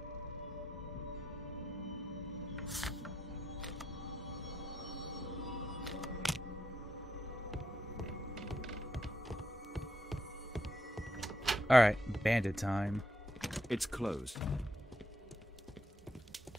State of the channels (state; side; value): normal; both; correlation 0.80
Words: Alright, bandit time. It's closed.